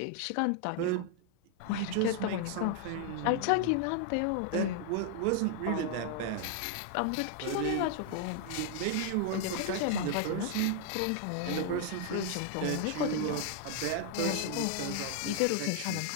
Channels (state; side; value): different; both; correlation 0.00